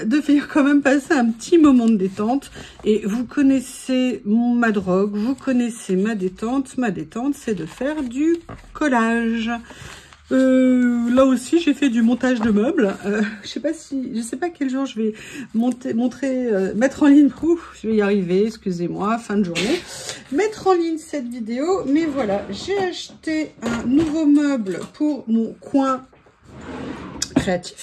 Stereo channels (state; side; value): identical; both; correlation 1.00